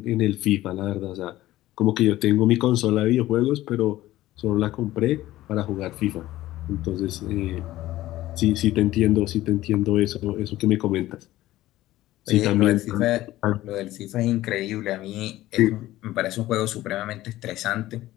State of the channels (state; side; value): quieter; right; 15.8 dB